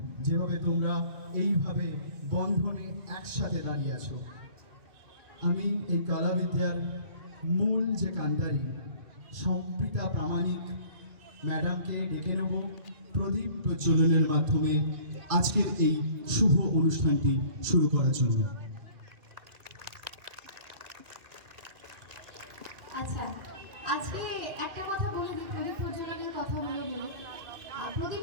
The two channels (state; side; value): late; left; 2.0 ms